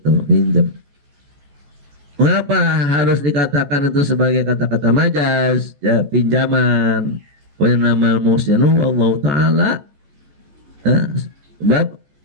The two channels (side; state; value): left; late; 14 ms